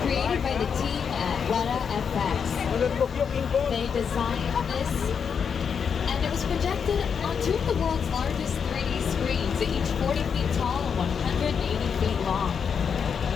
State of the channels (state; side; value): quieter; right; 6.7 dB